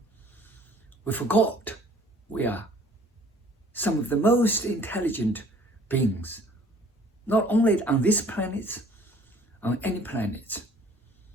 We forgot we are some of the most intelligent beings, not only on this planet, on any planet.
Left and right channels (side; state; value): both; normal; correlation 0.54